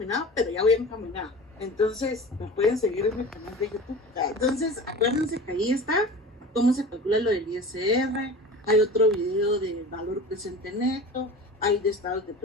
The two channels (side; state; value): both; normal; correlation 0.36